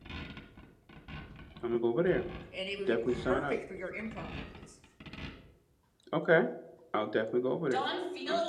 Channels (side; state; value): both; identical; correlation 1.00